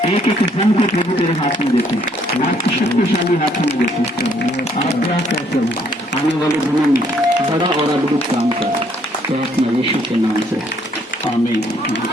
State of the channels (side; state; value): both; normal; correlation 0.66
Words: एक एक जन को प्रभु तेरे हाथ में देते हैं, आपकी शक्तिशाली हाथ में देते हैं। आप क्या कहते हो आने वाले दिनों में बड़ा और अद्भुत काम कर, तो अपने यीशु के नाम से